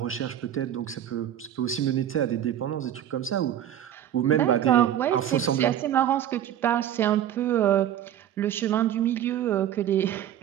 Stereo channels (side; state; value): left; quieter; 10.9 dB